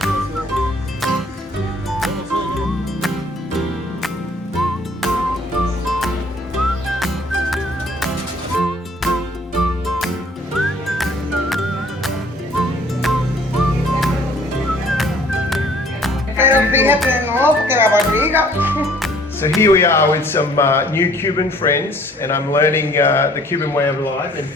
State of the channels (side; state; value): both; normal; correlation 0.57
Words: Pero fíjate, no, porque la barriga. So here we are with some new Cuban friends, and I'm learning the Cuban way of life. And